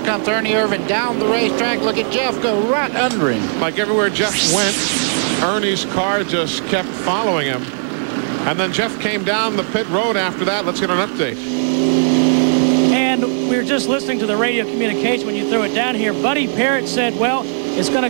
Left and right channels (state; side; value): silent; left; digital silence